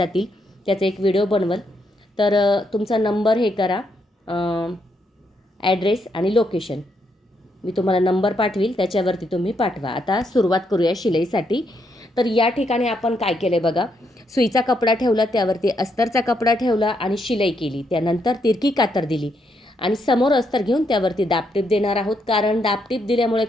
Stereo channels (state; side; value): normal; both; correlation 0.77